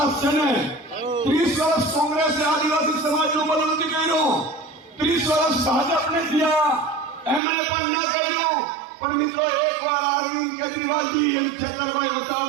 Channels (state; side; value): drops out; left; at 7.4 s